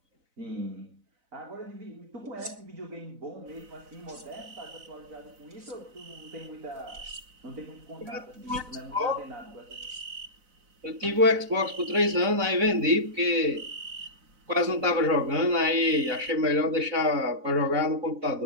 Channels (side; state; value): left; late; 4.0 ms